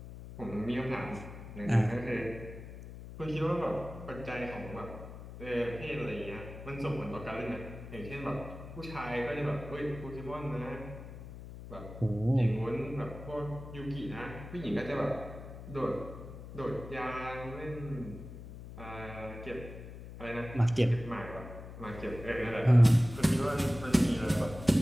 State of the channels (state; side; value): noise; left; hum, 12 dB below the sound